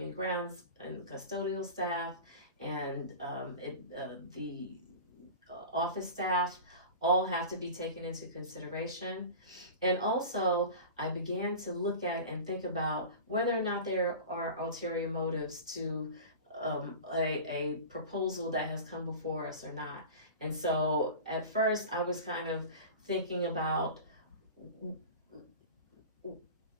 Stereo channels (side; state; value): both; inverted; correlation -0.34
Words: grounds and custodial staff and the office staff. All have to be taken into consideration. And also, I began to look at and think about whether or not there are ulterior motives to a proposal that has come before us or not. And so at first I was kind of thinking about,